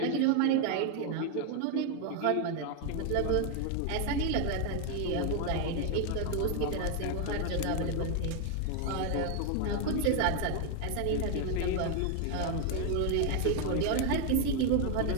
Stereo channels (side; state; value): both; different; correlation 0.01